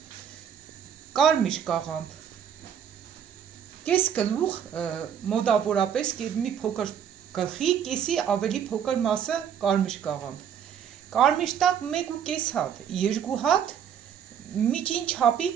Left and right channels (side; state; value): left; quieter; 8.5 dB